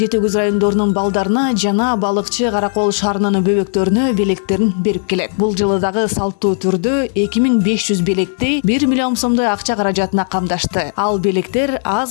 райондорунун балдарына жана балыкчы Каракол шаарынын бөбөктөрүнө белектерин берип келет. Бул жылы дагы салттуу түрдө 2500 белекти 1 миллион сомдой акча каражатына камдашты. Ал белектер аз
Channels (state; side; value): silent; right; 63 dB below the other